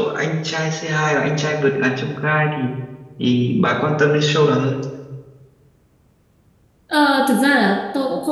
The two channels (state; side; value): identical; both; correlation 1.00